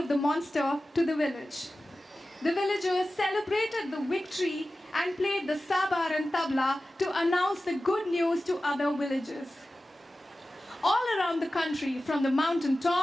the monster to the village. The villagers celebrated the victory and played the sabar and tabla to announce the good news to other villagers. All around the country, from the mountain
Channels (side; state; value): both; normal; correlation 0.95